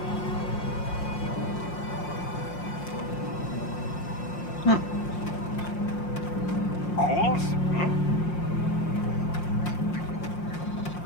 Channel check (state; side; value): late; right; 5.7 ms